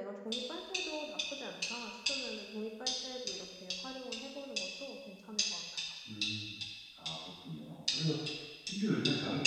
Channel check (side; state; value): both; identical; correlation 1.00